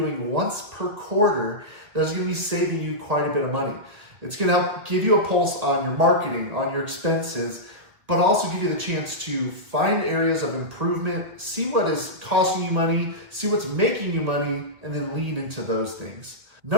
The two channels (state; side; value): late; left; 2.1 ms